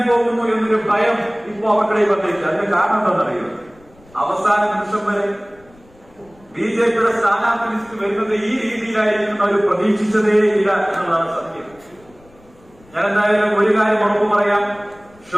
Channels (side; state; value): left; noise; rumble, 28 dB below the sound